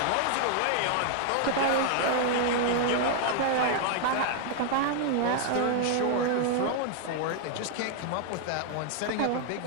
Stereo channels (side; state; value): both; different; correlation 0.00